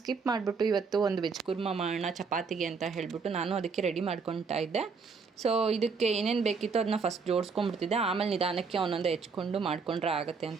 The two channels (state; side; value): quieter; left; 5.1 dB